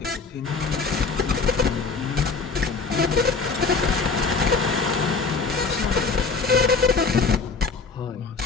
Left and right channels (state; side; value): quieter; right; 4.6 dB